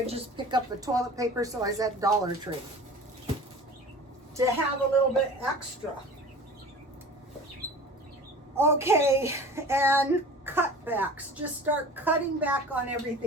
just pick up the toilet paper, so I was at Dollar Tree to have a little bit extra. Okay, and cutbacks. Just start cutting back on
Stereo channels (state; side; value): normal; both; correlation 0.40